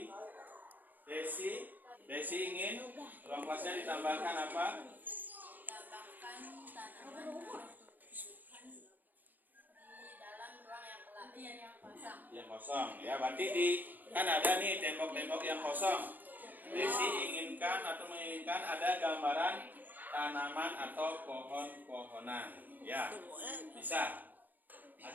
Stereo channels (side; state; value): left; late; 0.085 ms